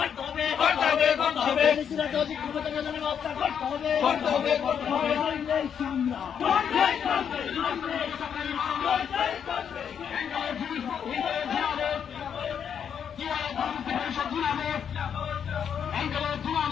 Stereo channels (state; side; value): quieter; right; 7.9 dB